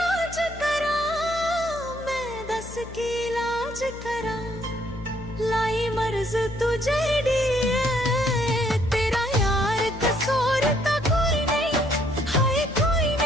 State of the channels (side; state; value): left; noise; hum, 14 dB below the sound